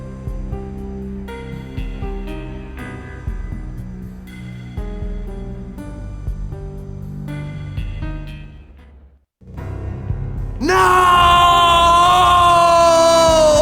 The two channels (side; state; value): both; identical; correlation 1.00